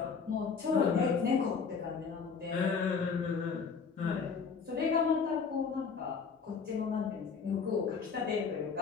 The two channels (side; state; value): right; quieter; 5.6 dB